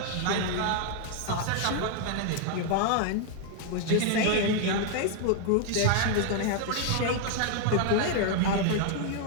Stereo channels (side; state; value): both; different; correlation 0.00